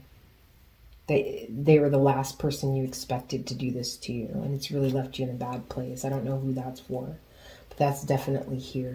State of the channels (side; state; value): both; identical; correlation 1.00